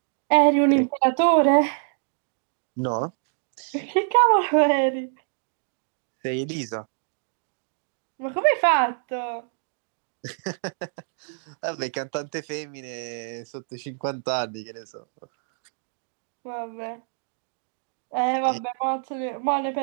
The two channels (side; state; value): left; silent; digital silence